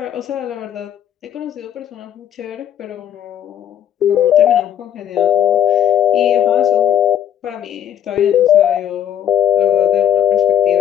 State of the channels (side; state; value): right; quieter; 10.3 dB